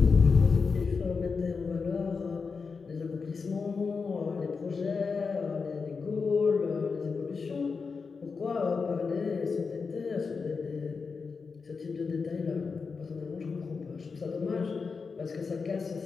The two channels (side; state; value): right; quieter; 5.0 dB